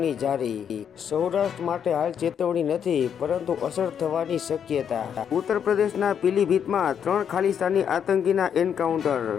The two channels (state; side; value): quieter; right; 8.1 dB